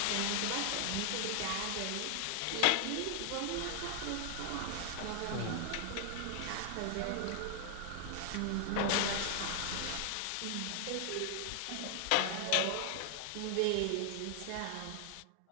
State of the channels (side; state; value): both; different; correlation 0.00